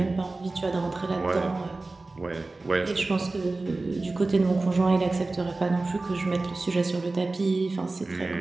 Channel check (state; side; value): quieter; left; 3.3 dB